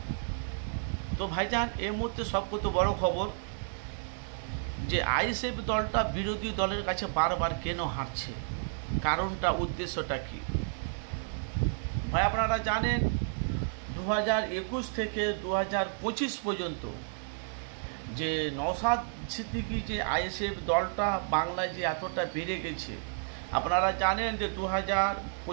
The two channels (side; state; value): left; silent; digital silence